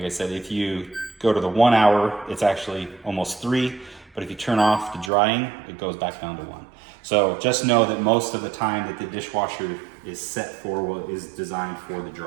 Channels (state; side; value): drops out; left; at 5.1 s